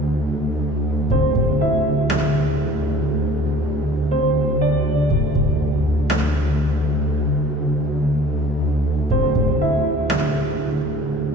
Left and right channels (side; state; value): both; normal; correlation 0.48